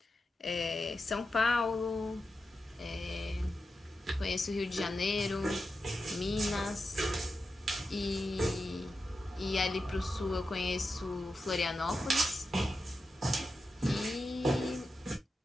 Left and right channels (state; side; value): normal; both; correlation 0.90